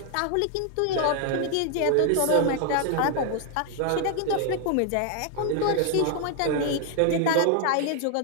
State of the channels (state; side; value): different; both; correlation 0.00